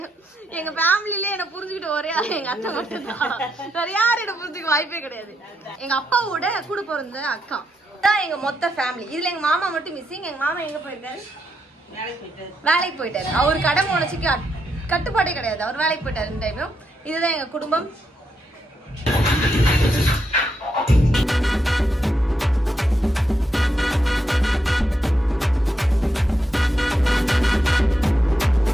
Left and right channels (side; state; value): both; normal; correlation 0.81